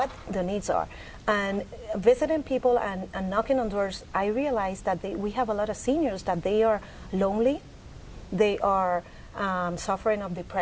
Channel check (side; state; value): both; identical; correlation 1.00